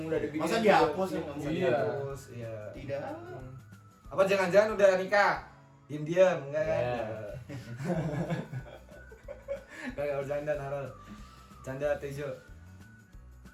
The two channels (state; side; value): identical; both; correlation 1.00